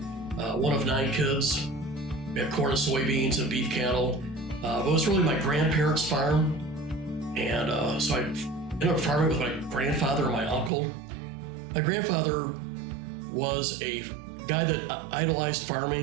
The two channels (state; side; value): drops out; left; at 10.7 s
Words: one of 9 kids. We had corn and soybeans and beef cattle. But it was really my grandparents' farm, and so I ended up farming with my grandfather and my uncle. My grandfather was a guy that idolized